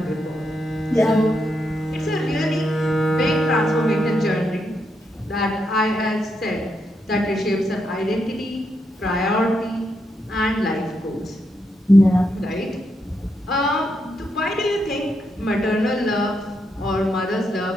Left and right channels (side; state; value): both; normal; correlation 0.81